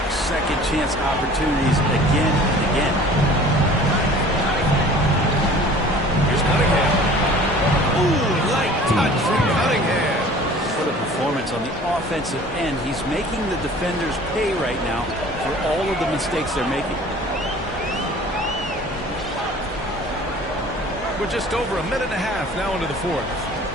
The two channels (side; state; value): both; normal; correlation 0.47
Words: second chance opportunities again and again. Here's Cunningham. Ooh, light touch from Cunningham. What a performance on the offensive end. He's making the defenders pay right now for all of the mistakes they're making. We're just over a minute and a half now into the fourth.